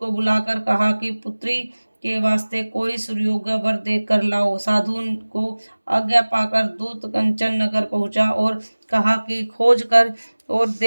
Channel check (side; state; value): both; inverted; correlation -1.00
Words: बुलाकर कहा कि पुत्री के वास्ते कोई सुयोग्य वर देख कर लाओ। साधु को आज्ञा पाकर दूत कंचन नगर पहुंचा और कहा कि खोज कर और